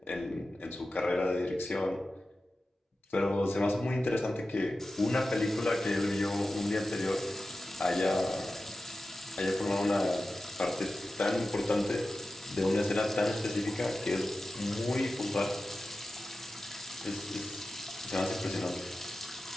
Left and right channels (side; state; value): both; normal; correlation 0.94